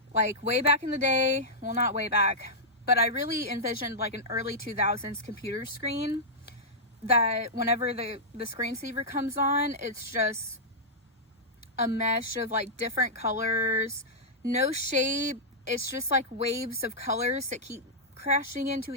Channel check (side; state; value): both; normal; correlation -0.11